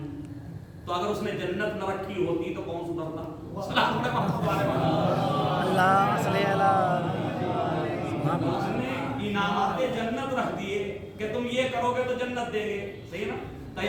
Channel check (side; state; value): both; identical; correlation 1.00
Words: تو اگر اس نے جنت نہ رکھی ہوتی تو کون سدھرتا؟ اللہ صلی اللہ، اس نے انعامات جنت رکھ دیے کہ تم یہ کرو گے تو جنت دیں گے، صحیح نا؟ تو